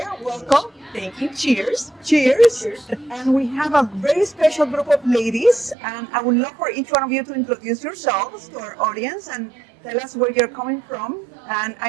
welcome. Thank you. Cheers. Cheers. And we have a very special group of ladies, and I would love for each one of you to introduce yourselves to our audience and tell us where you're coming from. And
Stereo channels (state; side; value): drops out; left; at 5.8 s